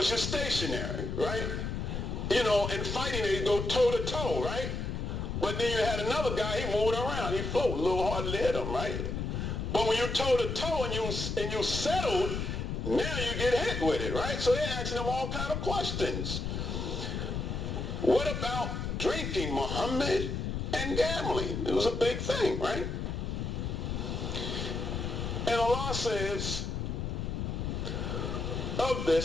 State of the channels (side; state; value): left; noise; rumble, 3 dB below the sound